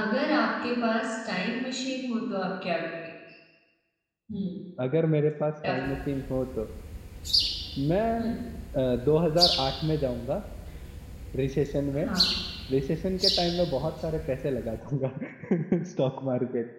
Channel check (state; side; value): identical; both; correlation 1.00